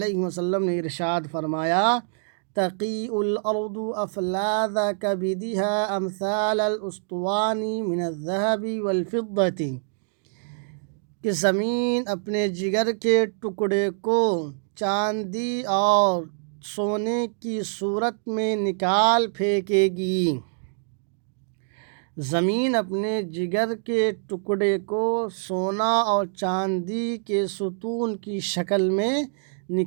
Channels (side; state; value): left; silent; digital silence